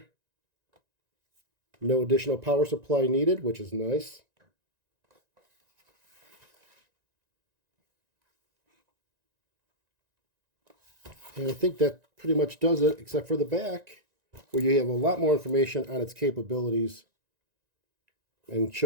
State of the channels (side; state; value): left; late; 1.9 ms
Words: No additional power supply needed, which is nice. And I think that pretty much does it, except for the back, where you have a lot more information on its capabilities and